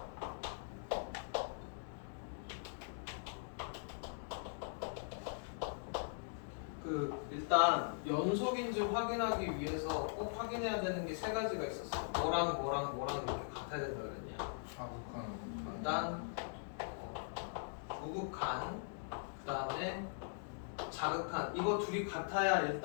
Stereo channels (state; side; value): silent; right; digital silence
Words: 일단 연속인지 확인하기 위해서 꼭 확인해야 되는 게 세 가지가 있었어. 뭐랑 뭐랑 뭐랑 이렇게 같아야 된다 그랬냐? 일단 부극한, 그 다음에 자극한. 이거 둘이 같아야